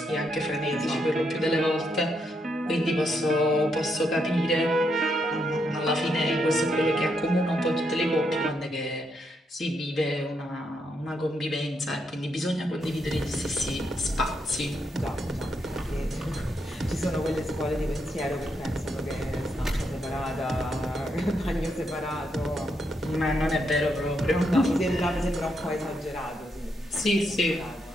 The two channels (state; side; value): normal; both; correlation 0.79